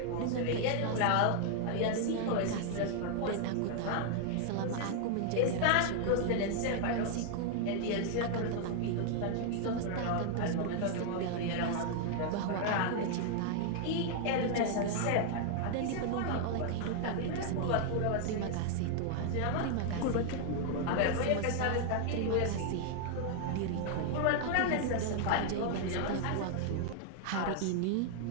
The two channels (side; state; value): both; different; correlation 0.00